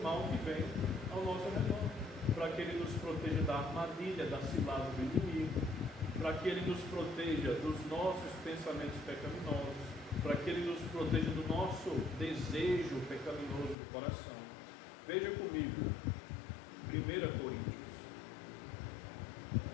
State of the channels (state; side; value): drops out; right; at 13.8 s